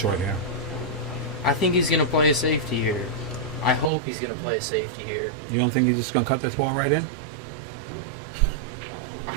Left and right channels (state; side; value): drops out; left; at 3.9 s